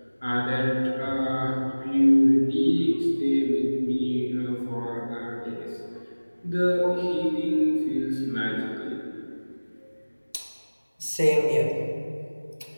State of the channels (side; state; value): both; inverted; correlation -1.00